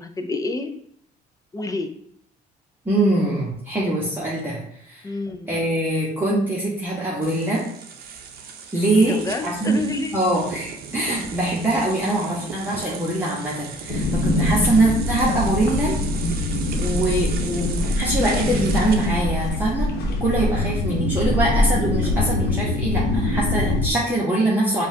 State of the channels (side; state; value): both; normal; correlation 0.56